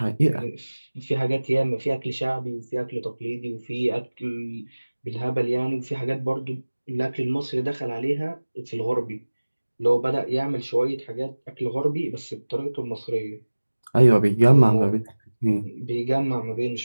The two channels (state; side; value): inverted; both; correlation -1.00